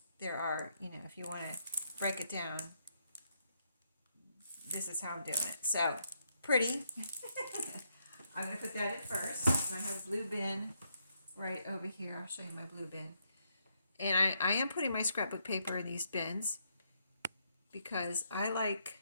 there are, you know, if you want to break it down, this is how I'm doing it. So, pretty. I'm going to put that in first. And I have a blue bin right over here. I'll show you my blue bin. And I am putting my scrapbook paper in these bins because I like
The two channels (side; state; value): both; inverted; correlation -0.76